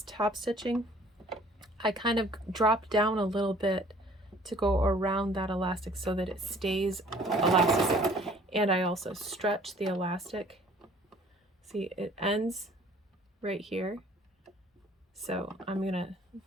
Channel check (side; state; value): both; normal; correlation 0.55